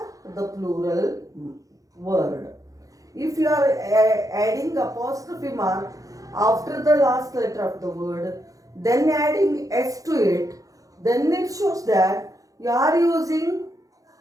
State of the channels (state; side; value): late; left; 0.17 ms